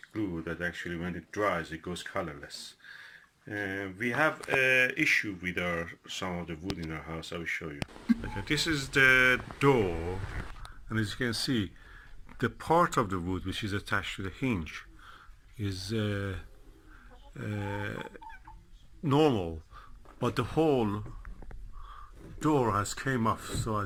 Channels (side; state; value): both; identical; correlation 1.00